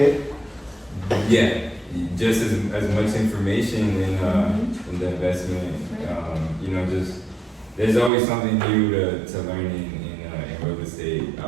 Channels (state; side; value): drops out; left; at 8.1 s